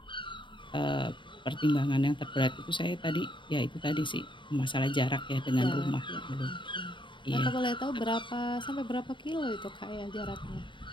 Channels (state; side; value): late; right; 0.23 ms